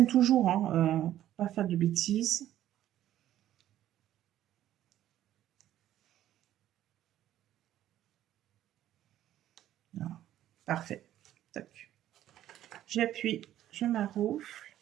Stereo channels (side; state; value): left; quieter; 12.5 dB